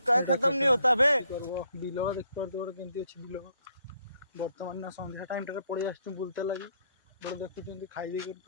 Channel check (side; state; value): both; inverted; correlation -0.71